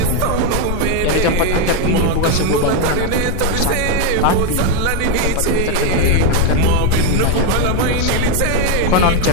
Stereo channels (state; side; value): different; both; correlation 0.01